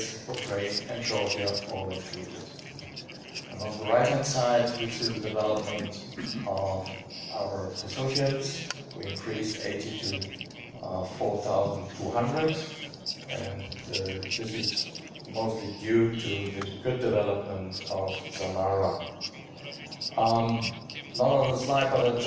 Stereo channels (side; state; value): both; identical; correlation 1.00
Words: Ukraine, and Georgia, all included. And on the right-hand side, we see the development of our associates. We increased 80 to 4,200, and this is mostly due to the good development of Samara. Not on the slide, but I